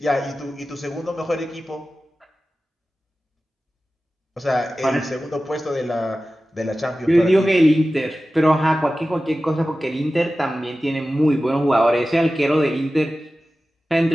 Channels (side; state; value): both; normal; correlation 0.95